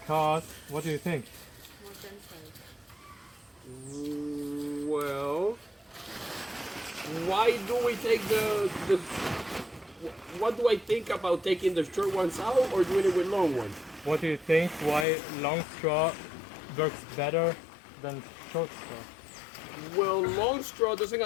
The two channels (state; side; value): drops out; right; at 15.1 s